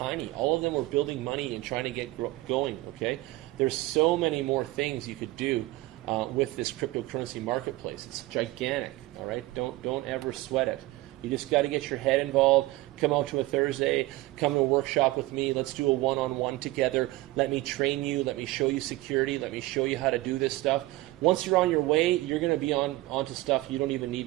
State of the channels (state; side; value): quieter; left; 19.0 dB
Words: All of them are building money and trying to get going, okay? There's so many more things you could do with this cryptocurrency marketplace. It's gigantic, all right? Don't ever sweat it. You just got to get your head involved. Come out to a Thursday. Come to a workshop with me. Let's do a one-on-one together. Let me train you. Let me show you security. Let me show you how to do this stuff. Once you're on your way, you're going to be onto stuff you don't even need